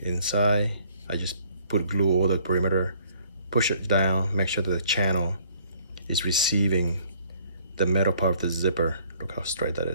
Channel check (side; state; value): both; inverted; correlation -0.61